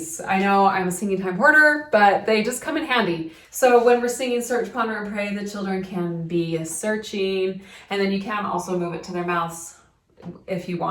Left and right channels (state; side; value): identical; both; correlation 1.00